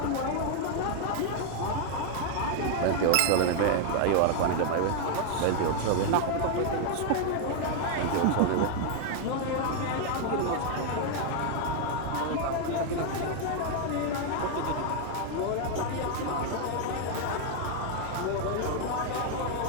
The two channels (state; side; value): different; both; correlation 0.00